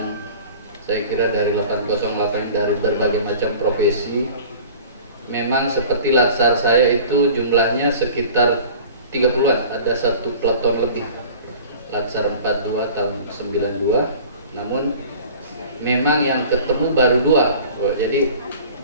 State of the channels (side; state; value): both; inverted; correlation -0.43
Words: saya kira dari 808 dari berbagai macam profesi. Memang seperti latsar saya itu jumlahnya sekitar 30-an, ada satu peleton lebih. Latsar 42 tahun 92, namun memang yang ketemu baru 2. Jadi